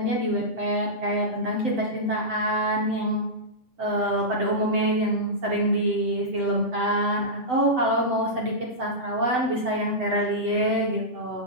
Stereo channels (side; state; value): left; late; 7.9 ms